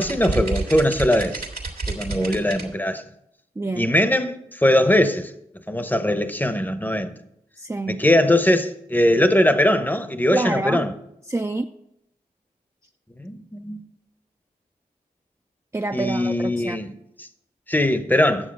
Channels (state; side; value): normal; both; correlation 0.83